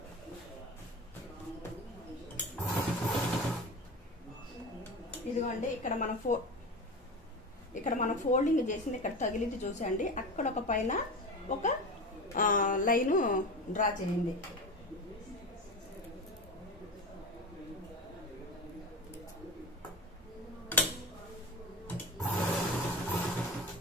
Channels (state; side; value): normal; both; correlation 0.27